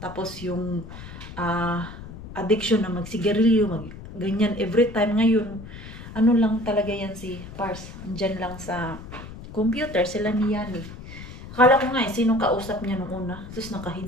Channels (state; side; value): noise; left; rumble, 13 dB below the sound